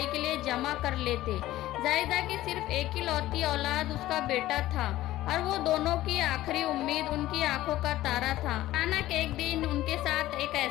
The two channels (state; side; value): quieter; right; 15.4 dB